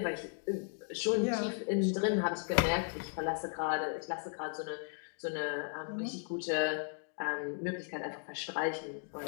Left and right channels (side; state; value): right; silent; 54 dB below the other